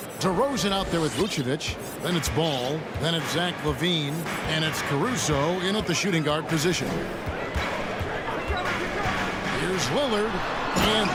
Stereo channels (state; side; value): identical; both; correlation 1.00